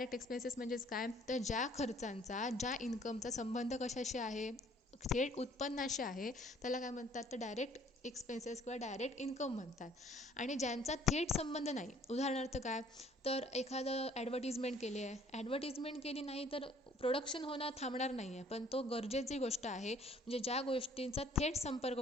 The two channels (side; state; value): both; normal; correlation 0.58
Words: एक्सपेन्सेस म्हणजेच काय तर ज्या खर्चांचा ज्या इन्कमचा संबंध कशाशी आहे, थेट उत्पन्नाशी आहे, त्याला काय म्हणतात तर डायरेक्ट एक्सपेन्सेस किंवा डायरेक्ट इन्कम म्हणतात. आणि ज्यांचा थेट संबंध नाही, उदाहरणार्थ काय तर एखादं ॲडव्हर्टिजमेंट केली आहे, ॲडव्हर्टिजमेंट केली नाही तर प्रोडक्शन होणं थांबणार नाही आहे, पण तो गरजेची गोष्ट आहे. म्हणजे ज्या गोष्टींचा थेट संपर्क